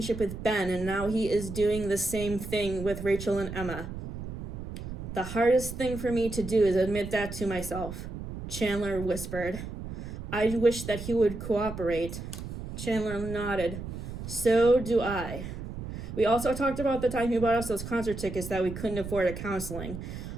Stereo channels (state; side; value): noise; right; rumble, 8 dB below the sound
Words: with Ben, and now he is doing the same thing with Rachel and Emma. The hardest thing for me to do is admit that to myself, Chandler whispered. I wish that he would cooperate. Chandler nodded. So do I. We also talked about the time he bought us those concert tickets that we couldn't afford at counseling.